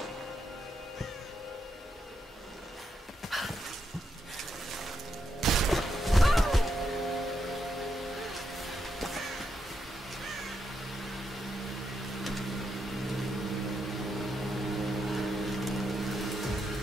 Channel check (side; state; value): both; normal; correlation 0.82